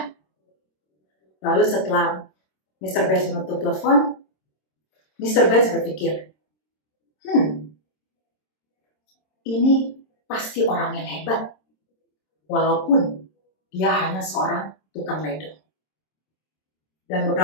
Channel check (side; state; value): right; late; 26 ms